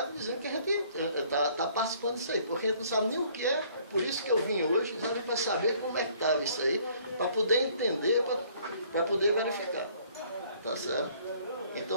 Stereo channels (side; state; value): both; inverted; correlation -0.60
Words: dizendo que a gente está participando disso aí, porque a gente não sabe nem o que é, por isso que eu vim hoje, para saber como é que estava isso aí, para poder entender, para poder verificar. Tá certo?